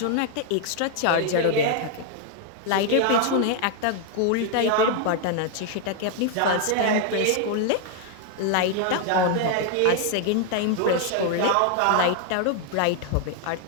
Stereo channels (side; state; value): both; different; correlation 0.00